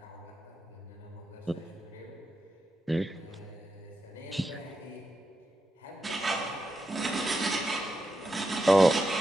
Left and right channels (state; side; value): normal; both; correlation 0.87